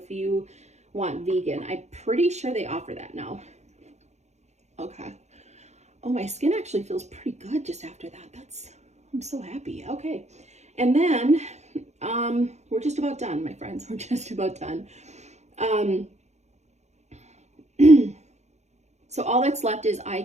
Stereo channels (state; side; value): late; left; 0.33 ms